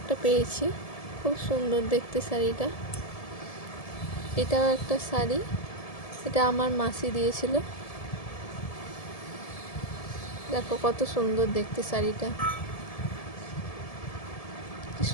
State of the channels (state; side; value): late; right; 1.7 ms